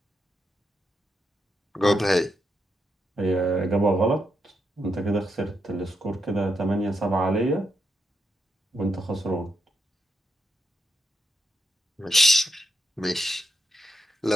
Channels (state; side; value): normal; both; correlation 0.83